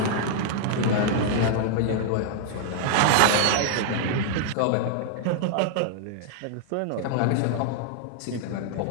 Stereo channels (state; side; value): different; both; correlation 0.00